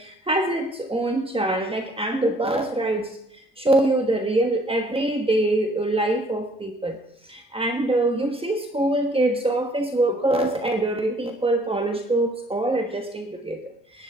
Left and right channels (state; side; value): normal; both; correlation 0.60